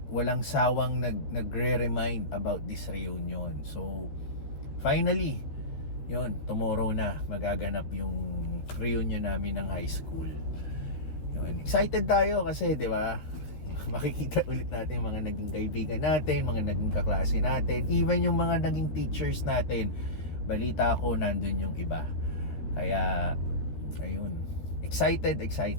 walang sawang nagre-remind about this reunion. So, finally, yun, tomorrow na magaganap yung reunion namin ng high school. Yun, excited tayo kasi, di ba? Makikita ulit natin yung mga naging kaibigan natin, mga naging kaklase natin, even yung mga naging teachers natin. Balita ko, nandun yung iba. Kaya, ayun, excited.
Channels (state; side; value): late; right; 13 ms